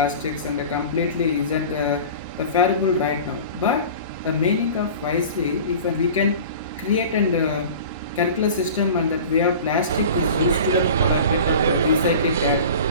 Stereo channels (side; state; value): both; inverted; correlation -0.38